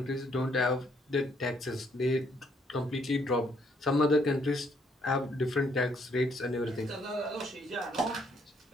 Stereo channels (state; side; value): normal; both; correlation 0.69